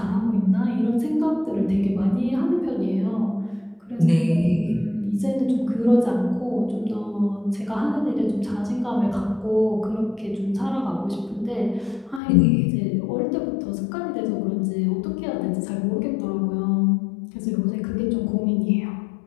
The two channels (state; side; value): drops out; right; at 12.2 s